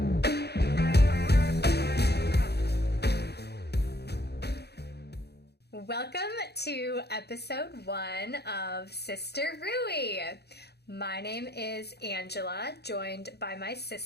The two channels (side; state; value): right; late; 0.48 ms